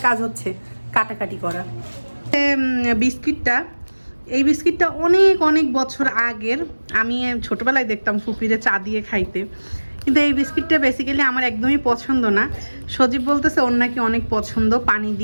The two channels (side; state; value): both; inverted; correlation -1.00